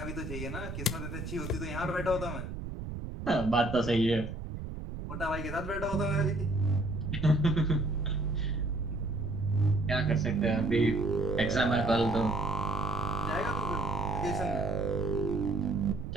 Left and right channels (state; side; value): noise; right; rumble, 7 dB below the sound